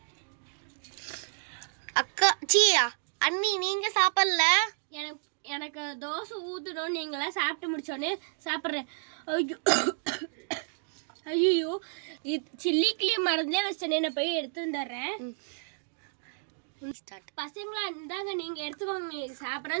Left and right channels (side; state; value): left; silent; digital silence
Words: அக்கா, அண்ணி, நீங்க சாப்பிடல? எனக்கு தோசை ஊற்றணும். நீங்களாம் சாப்பிட்டு முடிச்சோடனே சாப்பிட்றேன். ஐயோ, சில்லி கிளீம் மறந்தே வச்சேனே, நான் போய் எடுத்து வந்துடுறேன். பசங்களா, இருந்தாங்க, நீங்க எடுத்துக்கோங்க.